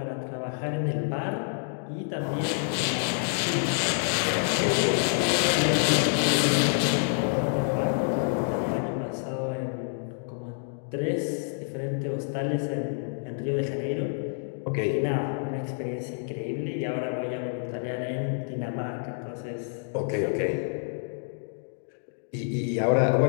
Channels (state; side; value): silent; right; digital silence